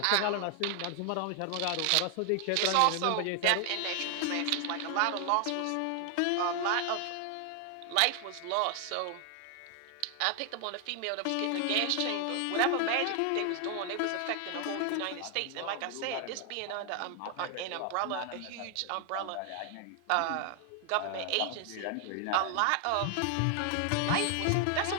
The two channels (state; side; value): different; both; correlation 0.00